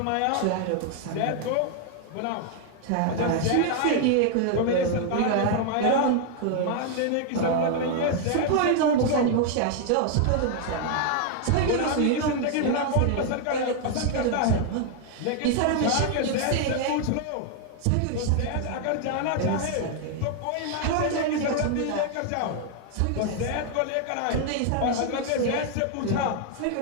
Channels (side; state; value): both; different; correlation 0.00